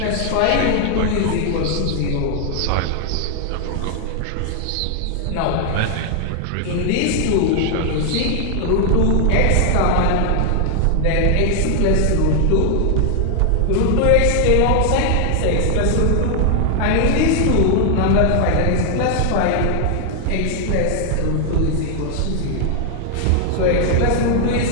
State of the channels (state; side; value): different; both; correlation 0.00